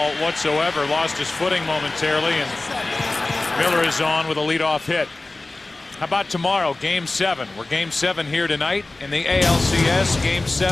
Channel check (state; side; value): quieter; right; 3.0 dB